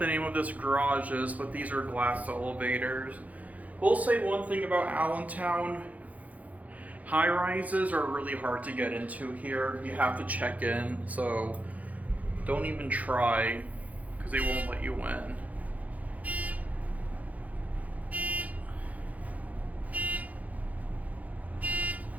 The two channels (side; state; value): left; late; 0.073 ms